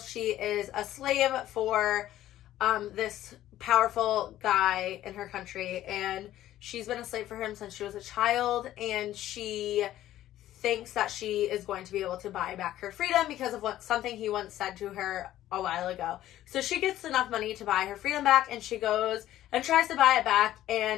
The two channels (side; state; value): right; quieter; 13.5 dB